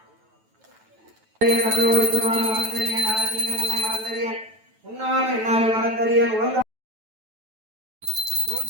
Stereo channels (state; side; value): late; left; 9.1 ms